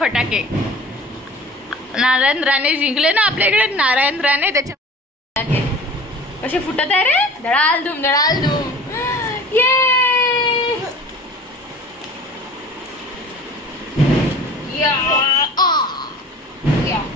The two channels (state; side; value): normal; both; correlation 0.43